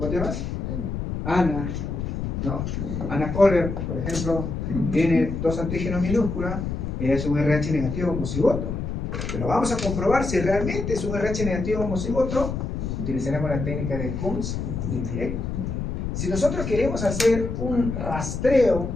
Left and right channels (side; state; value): left; noise; rumble, 4 dB below the sound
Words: te llamas? Ana, ¿no? Ana Kohler, por ejemplo, tiene dos antígenos minúsculos, es un RH negativo homocigoto. Pero vamos a comprobar si realmente es un RH negativo homocigoto, utilizaremos la técnica del CUMS indirecto. Si nosotros queremos hacer un rastreo